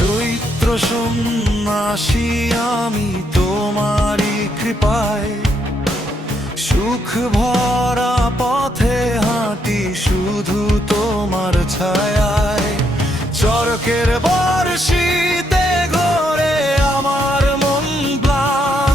সন্ন্যাসী আমি তোমারই কৃপায়, সুখ ভরা পথে হাঁটি শুধু তোমার ছায়ায়। চরকের বর্ষিতে ঘোরে আমার মন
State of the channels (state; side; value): normal; both; correlation 0.76